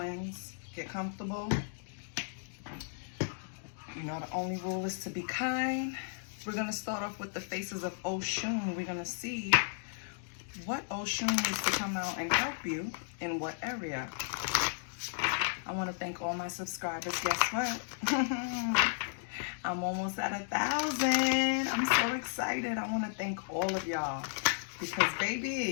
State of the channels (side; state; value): right; silent; digital silence